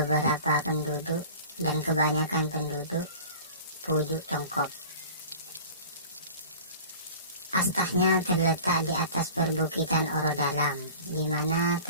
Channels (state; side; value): inverted; both; correlation -0.42